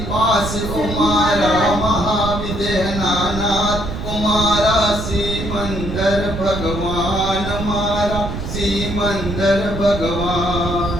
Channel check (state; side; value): noise; right; rumble, 6 dB below the sound